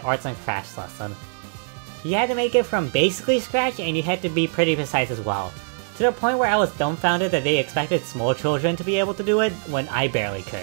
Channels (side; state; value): left; silent; digital silence